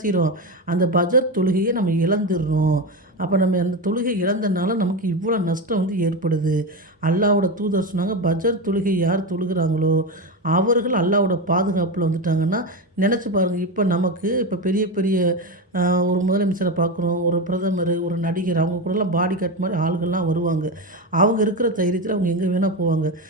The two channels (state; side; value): normal; both; correlation 0.17